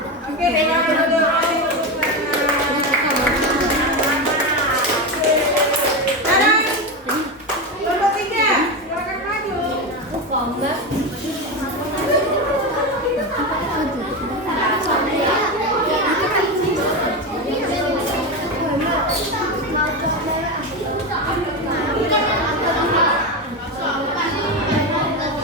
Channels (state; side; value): normal; both; correlation 0.16